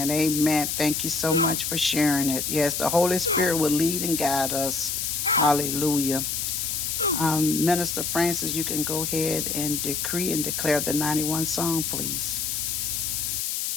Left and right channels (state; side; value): noise; left; hiss, 1 dB below the sound